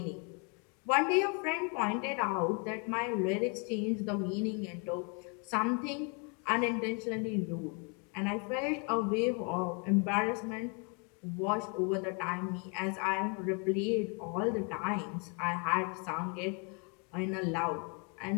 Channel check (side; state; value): right; quieter; 35.9 dB